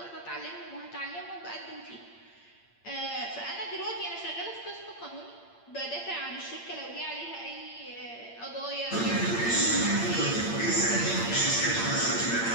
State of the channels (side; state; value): right; late; 8.7 ms